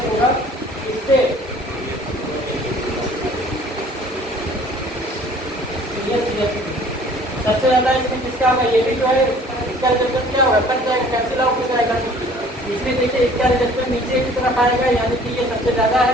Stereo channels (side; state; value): both; normal; correlation 0.52